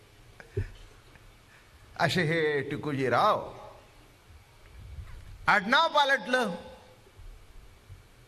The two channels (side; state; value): both; identical; correlation 1.00